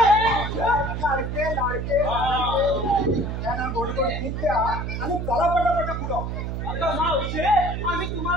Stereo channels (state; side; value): noise; right; hum, 4 dB below the sound